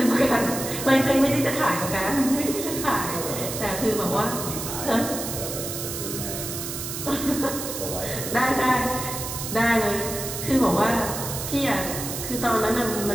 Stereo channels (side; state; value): right; noise; hiss, 6 dB below the sound